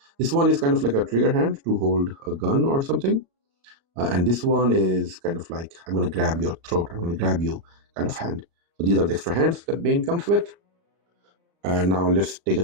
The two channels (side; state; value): left; late; 35 ms